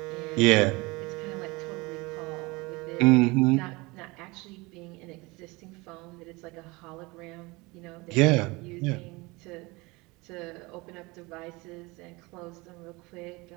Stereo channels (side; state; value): left; quieter; 24.1 dB